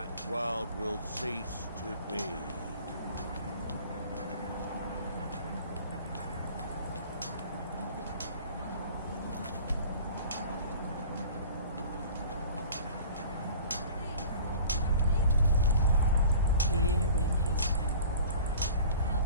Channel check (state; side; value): inverted; both; correlation -0.43